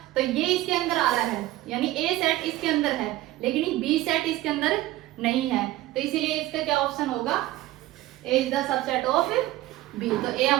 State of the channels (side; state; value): left; quieter; 16.3 dB